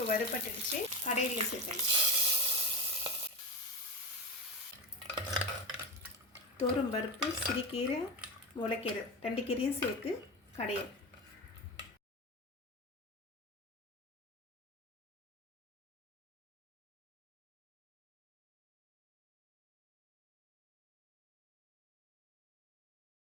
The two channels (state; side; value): normal; both; correlation 0.21